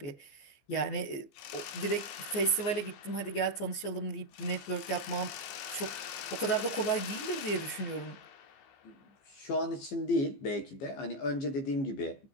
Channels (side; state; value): right; late; 15 ms